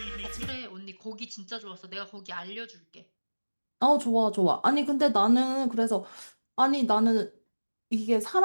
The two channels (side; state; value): both; inverted; correlation -1.00